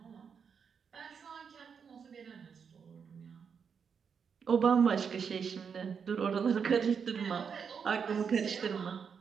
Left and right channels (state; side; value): quieter; left; 6.5 dB